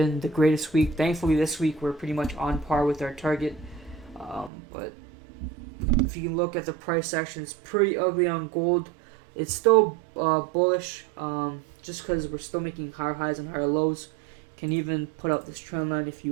the greatest week. Thankfully, this week we're pretty much on par with our target. But if you can look at the price action, it's pretty ugly on gold. It's still bullish, just because we're still making higher highs and higher lows. Can even put up this trend line if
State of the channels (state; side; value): drops out; left; at 4.5 s